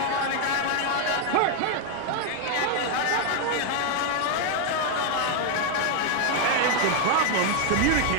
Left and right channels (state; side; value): different; both; correlation 0.01